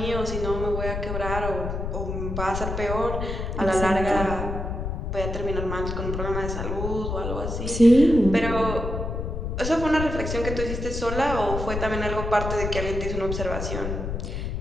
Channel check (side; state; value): left; noise; rumble, 4 dB below the sound